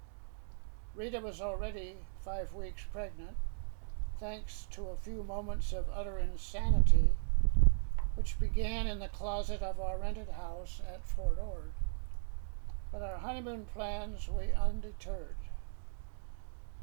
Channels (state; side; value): silent; left; digital silence